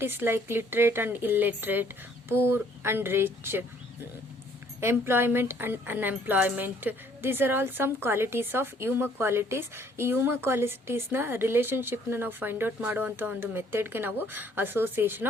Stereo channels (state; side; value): normal; both; correlation 0.61